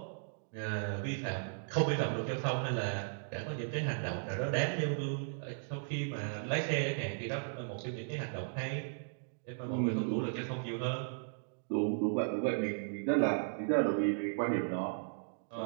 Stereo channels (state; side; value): silent; left; digital silence